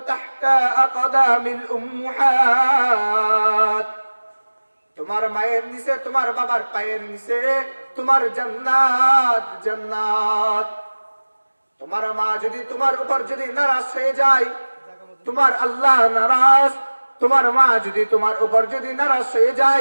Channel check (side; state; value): both; inverted; correlation -1.00